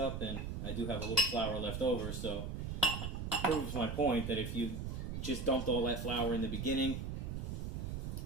and I do have a little flour left over, so it proves my point that if you just dumped all that flour in the beginning,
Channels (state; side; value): noise; right; rumble, 4 dB below the sound